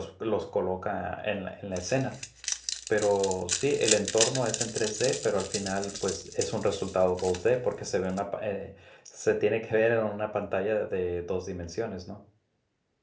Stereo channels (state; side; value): identical; both; correlation 1.00